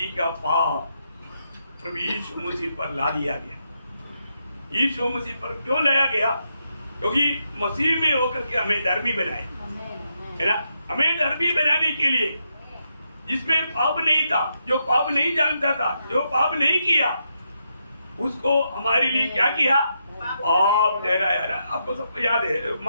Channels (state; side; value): inverted; both; correlation -0.82